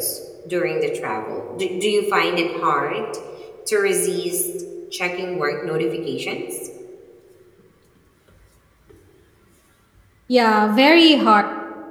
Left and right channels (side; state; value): both; identical; correlation 1.00